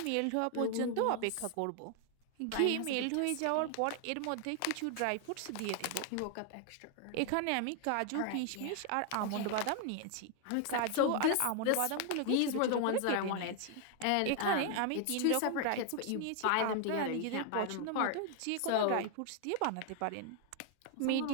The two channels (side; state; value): both; different; correlation 0.00